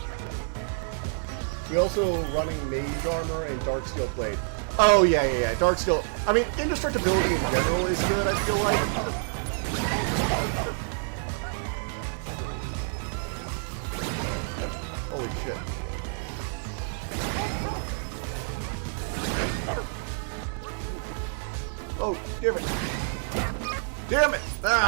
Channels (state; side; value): silent; left; digital silence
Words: We also running Mage Armor and Darksteel Blade. Oh, yeah. Darksteel. I mean, indestructibility in general is good, I feel like. Damn it! Damn it!